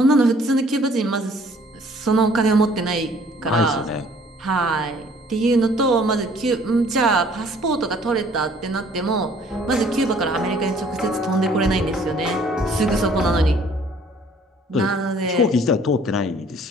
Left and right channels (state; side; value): normal; both; correlation 0.57